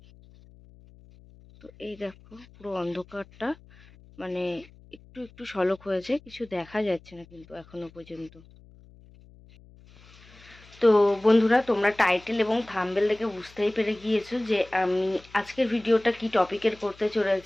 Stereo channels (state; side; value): noise; left; hum, 24 dB below the sound